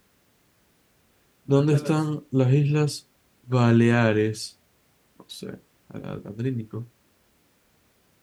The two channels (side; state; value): both; identical; correlation 1.00